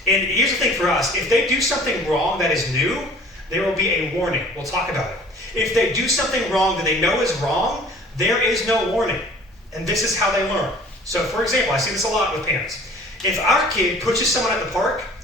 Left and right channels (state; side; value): normal; both; correlation 0.49